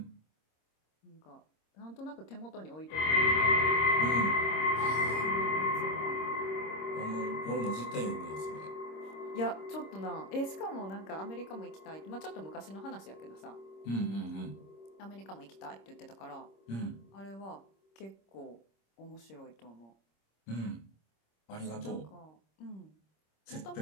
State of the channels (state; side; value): late; right; 26 ms